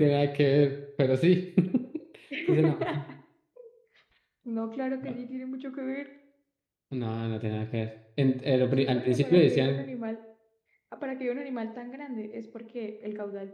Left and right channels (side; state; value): both; identical; correlation 1.00